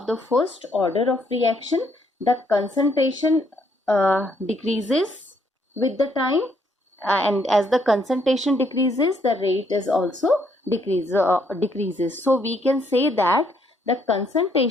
the first order of reaction, the concentration decreases with the time, and as the concentration decreases, the rate is also decreases. So we can say that the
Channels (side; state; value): both; normal; correlation 0.70